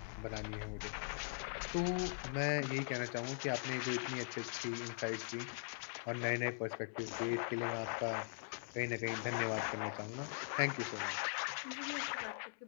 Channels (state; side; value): silent; right; 50 dB below the other